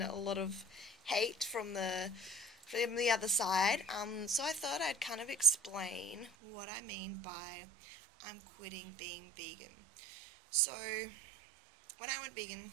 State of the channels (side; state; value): left; drops out; at 6.3 s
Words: a lot of hate from the other side. So I thought I'd kind of explain what I mean by I'm quitting being vegan. So when I went vegan